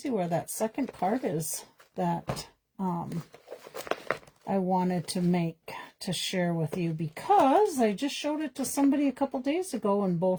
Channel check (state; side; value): identical; both; correlation 1.00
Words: where that second card is that I wanted to share with you, because I just showed it to somebody a couple days ago and